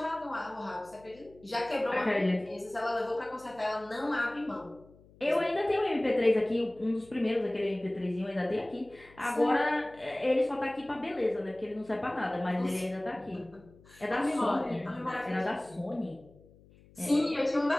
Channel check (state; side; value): noise; left; hum, 25 dB below the sound